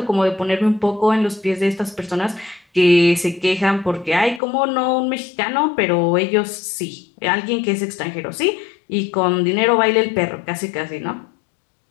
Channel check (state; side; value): drops out; right; at 4.4 s